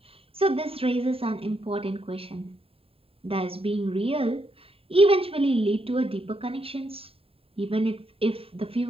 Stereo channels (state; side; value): late; left; 0.27 ms